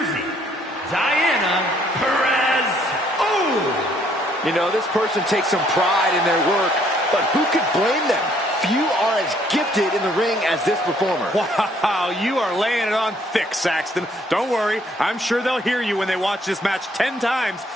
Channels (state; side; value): normal; both; correlation 0.65